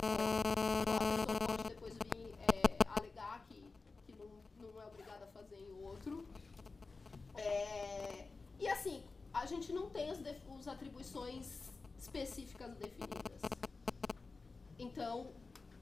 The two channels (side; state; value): right; quieter; 4.0 dB